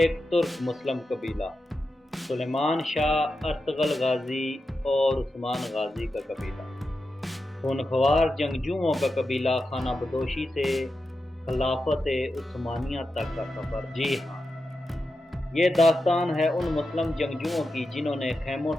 ترک مسلم قبیلہ، سلیمان شاہ ارطغرل غازی اور عثمان غازی کا قبیلہ، خونخوار جنگجوؤں کا قبیلہ، خانہ بدوشی سے خلافت عثمانیہ تک کا سفر۔ جی ہاں، یہ داستان ہے ان مسلم جنگجوؤں کی جنہوں نے خیموں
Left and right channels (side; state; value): both; normal; correlation 0.90